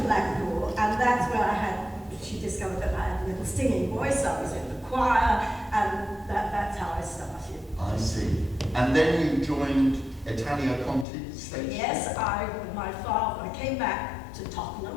and that's where she discovered that I had a little singing voice. I was in the choir, and that's how I started. I see. And then you joined Italia Conti stage? Yes, with my father, I came back to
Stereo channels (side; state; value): right; drops out; at 11.1 s